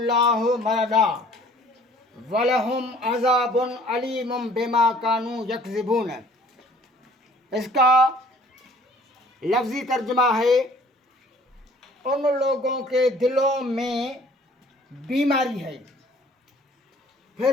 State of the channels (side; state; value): both; normal; correlation 0.54